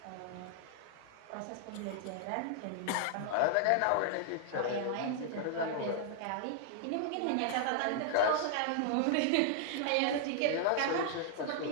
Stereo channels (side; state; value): both; different; correlation 0.00